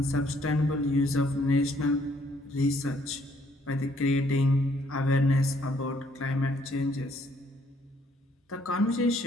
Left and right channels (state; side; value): normal; both; correlation 0.66